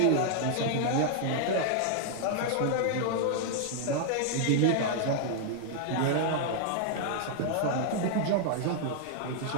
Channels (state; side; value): different; both; correlation -0.01